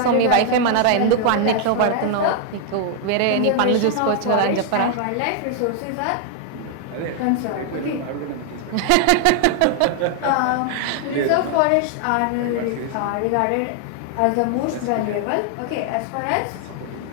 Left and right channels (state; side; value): different; both; correlation 0.00